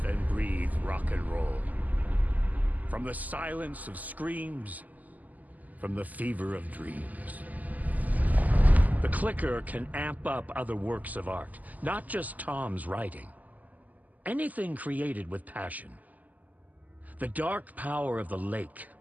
and breathe rock and roll. From the silence of screams, from the fever of dreams. The clicker can amp up other works of art, not just Tom's writing. Anything created with passion. The dark power of the lake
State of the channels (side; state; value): left; late; 0.079 ms